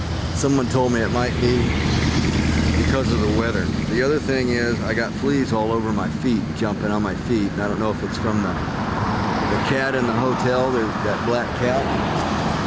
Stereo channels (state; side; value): identical; both; correlation 1.00